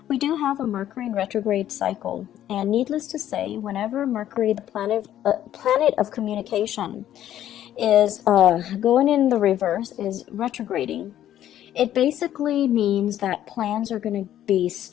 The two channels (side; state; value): right; quieter; 11.7 dB